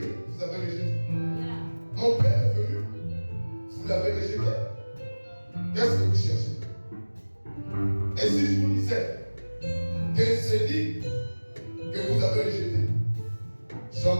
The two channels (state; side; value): inverted; both; correlation -1.00